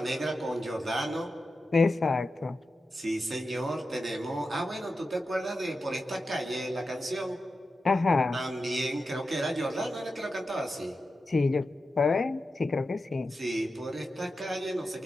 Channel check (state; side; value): normal; both; correlation 0.91